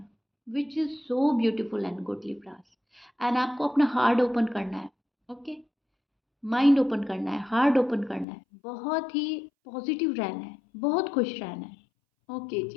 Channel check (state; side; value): drops out; right; at 8.2 s